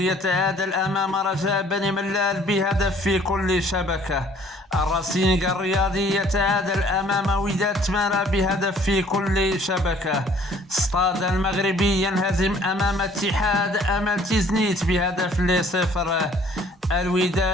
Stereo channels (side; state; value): both; normal; correlation 0.57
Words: يتعادل أمام رجاء بني ملال ب1 في كل شبكة. الرصينق الرياضي يتعادل أمام وداد تمارا ب1 في كل شبكة. سطاد المغربي ينهزم أمام اتحاد أمل تيزنيت ب1 ل0.